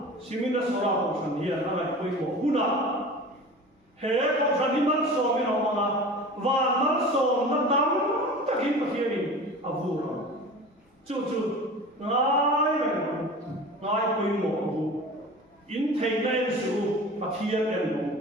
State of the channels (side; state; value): both; normal; correlation 0.37